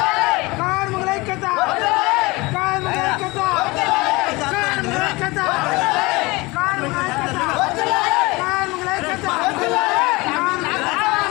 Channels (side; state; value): right; quieter; 23.4 dB